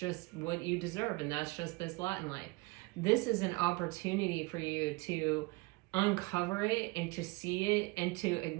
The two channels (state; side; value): quieter; left; 24.6 dB